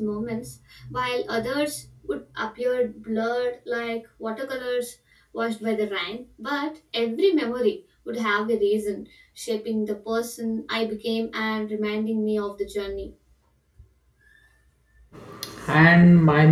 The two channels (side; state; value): both; identical; correlation 1.00